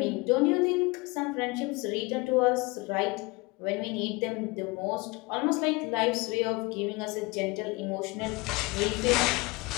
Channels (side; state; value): right; quieter; 25.1 dB